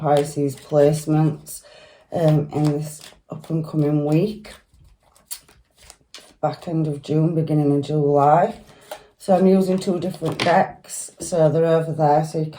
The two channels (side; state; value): both; identical; correlation 1.00